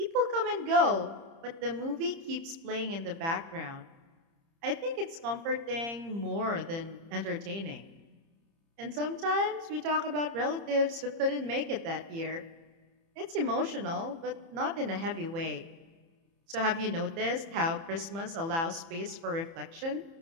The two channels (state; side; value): late; left; 30 ms